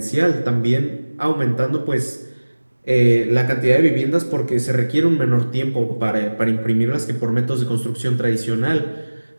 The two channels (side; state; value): both; inverted; correlation -1.00